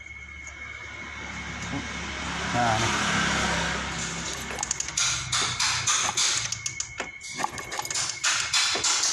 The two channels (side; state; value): both; identical; correlation 1.00